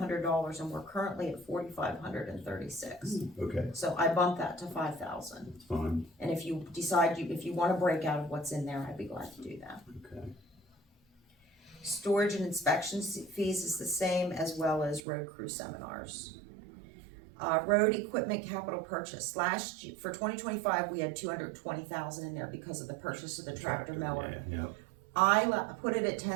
and we're currently at $4,536. Okay, So I bumped that to 5,000. that's fine, And if you decide if you want to break out of what's in there, I'd be glad to do that. okay. Storage and inspection fees is the same, as well as road crew seminars. Road equipment capital purchase. Last year, for 2025, we had 220,000 in there because of the purchase of the tractor mower. Yeah, yeah. I put it at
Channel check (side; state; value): left; drops out; at 15.0 s